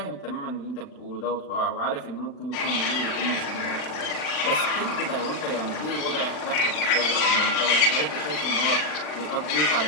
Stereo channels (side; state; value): right; late; 40 ms